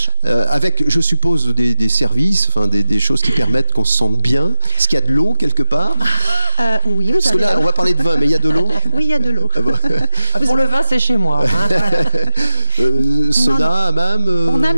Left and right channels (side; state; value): both; inverted; correlation -0.98